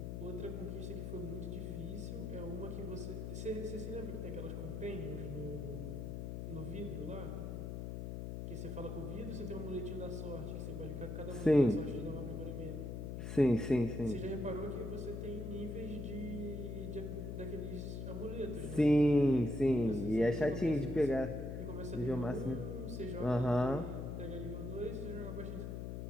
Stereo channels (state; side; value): noise; left; hum, 5 dB below the sound